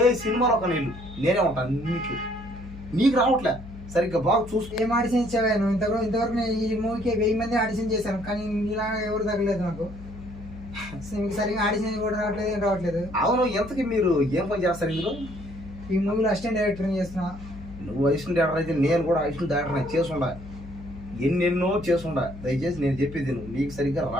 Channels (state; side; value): noise; left; hum, 14 dB below the sound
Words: సినిమాలో ఒక నీళ్ళు నేనే ఉంటాను నీకు, నీకు రావట్లే సరిగ్గా. బాగా చూసుకో. ఏం ఆడిషన్ ఇచ్చావా నువ్వు? ఇంతవరకు నేను ఈ మూవీకి 1000 మంది ఆడిషన్ చేశాను కానీ ఇలా ఎవరు తగ్గలేదు నాకు. సరిగ్గా ఆడిషన్ కూడా రావట్లేదు. అవును, ఎంతకి మీరు ఏం పని చేస్తారు ఇందులో? ఈ మూవీలో అసిస్టెంట్ డైరెక్టర్ చేస్తున్నా. నువ్వు అసిస్టెంట్ డైరెక్టర్ అయితే నేను కూడా అసిస్టెంట్ డైరెక్టర్ చేసుండా, ఎన్నెన్నో చేసుండా. దయచేసి నేను చెప్పేది నీకు సరిగ్గా